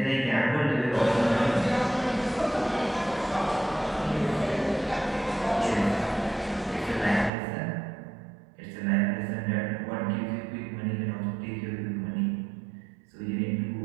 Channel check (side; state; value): left; drops out; at 7.3 s